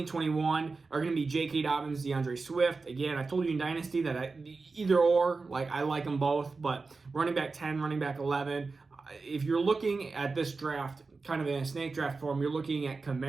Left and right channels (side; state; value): left; quieter; 4.1 dB